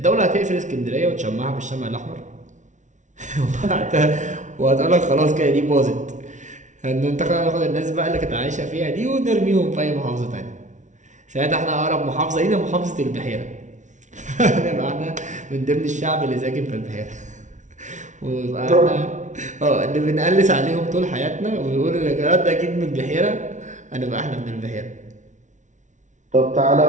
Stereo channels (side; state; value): left; late; 0.36 ms